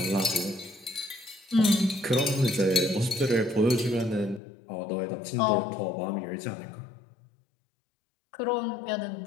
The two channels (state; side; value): drops out; right; at 4.4 s